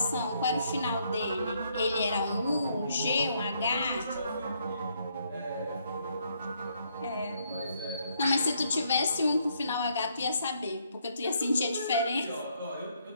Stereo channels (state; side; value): inverted; both; correlation -0.72